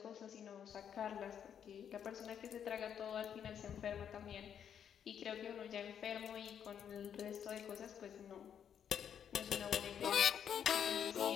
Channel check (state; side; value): quieter; right; 8.5 dB